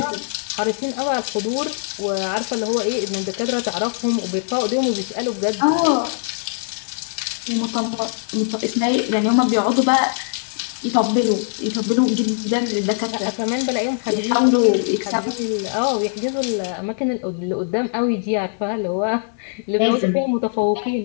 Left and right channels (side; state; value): right; silent; digital silence